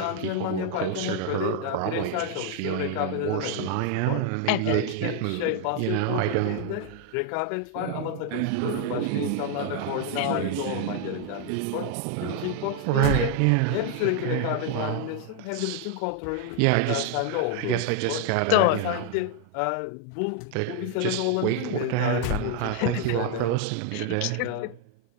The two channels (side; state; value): both; different; correlation 0.00